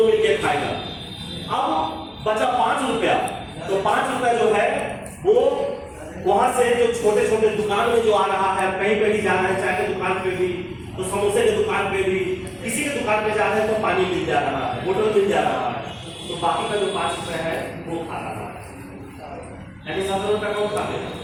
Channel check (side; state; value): both; identical; correlation 1.00